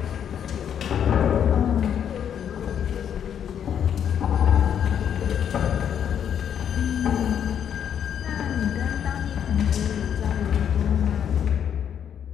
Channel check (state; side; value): quieter; right; 8.8 dB